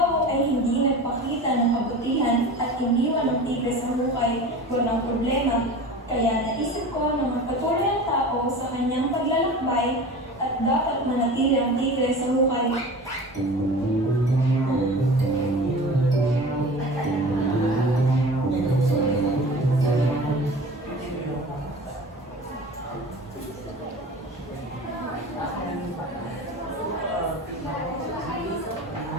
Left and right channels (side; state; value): both; normal; correlation 0.36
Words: ay hindi nagpakita ng kabutihan at iniwan ng tigre sa hukay, walang problema. Kaya naisip ko na magpatuloy ang tao sa kanyang paglalakbay at dapat manatili ang tigre sa hukay.